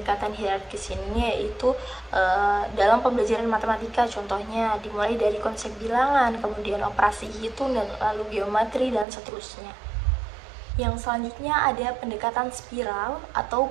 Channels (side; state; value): left; drops out; at 9.1 s